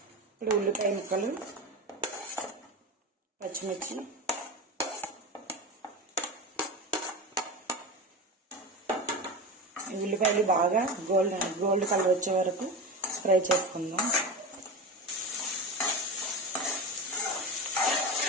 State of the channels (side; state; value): both; normal; correlation 0.24